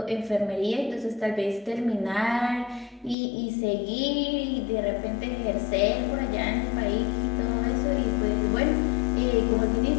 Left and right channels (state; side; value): drops out; right; at 3.2 s